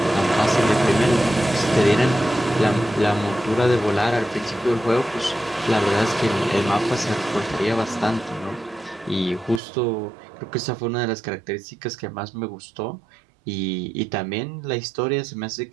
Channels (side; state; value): left; drops out; at 9.6 s